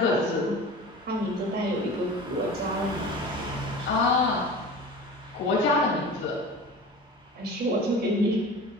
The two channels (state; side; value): normal; both; correlation 0.36